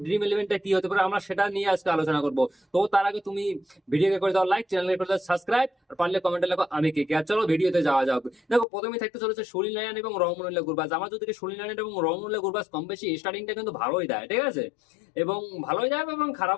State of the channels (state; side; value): drops out; right; at 8.7 s